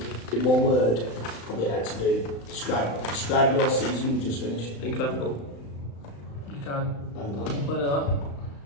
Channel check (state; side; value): late; right; 35 ms